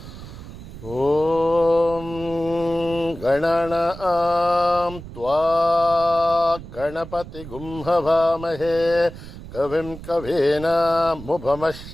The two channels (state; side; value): noise; right; rumble, 14 dB below the sound